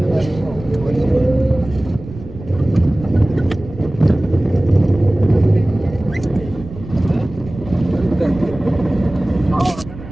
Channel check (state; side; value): noise; right; rumble, 14 dB below the sound